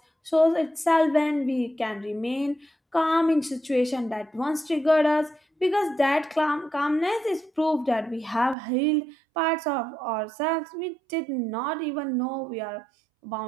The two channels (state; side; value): drops out; left; at 8.6 s